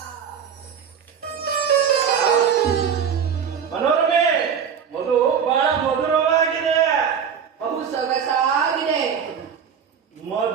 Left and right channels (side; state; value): left; quieter; 7.4 dB